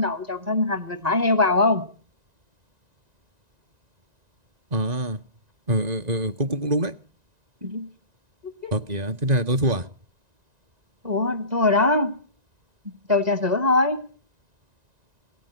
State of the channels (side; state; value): left; late; 1.9 ms